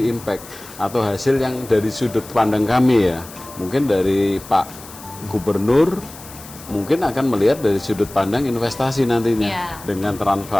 impact atau hasil yang dari sudut pandang kami ya. Mungkin dari Pak Gubernur mungkin akan melihat dari sudut pandang investasi nantinya. Dengan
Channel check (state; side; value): noise; left; hiss, 17 dB below the sound